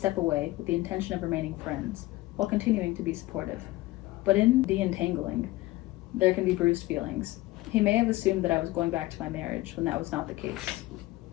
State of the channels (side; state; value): right; quieter; 18.7 dB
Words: away with the intention of remaining friends, while continuing to be supportive. But in the entangling, there can be bruised feelings. He may have assumed that I was going back to my marriage when that was not the